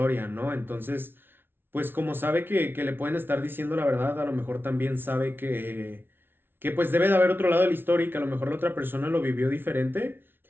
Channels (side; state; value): left; late; 0.11 ms